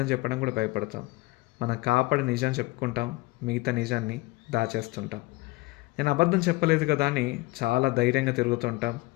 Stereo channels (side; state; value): right; quieter; 22.1 dB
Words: చెప్పడం కూడా భయపడతాం. మనం కాపాడి నిజం చెప్పుకుంటాం, మిగతా నిజాన్ని దాచేస్తుంటాం. నేను అబద్ధం చెప్పలేదు కదా అని చాలా ధైర్యంగా తిరుగుతుంటాం,